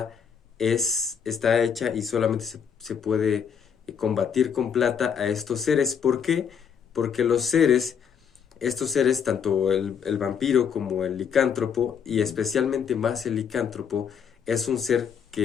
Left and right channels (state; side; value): quieter; right; 7.3 dB